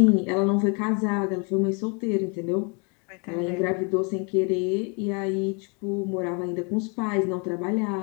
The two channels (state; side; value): quieter; right; 34.3 dB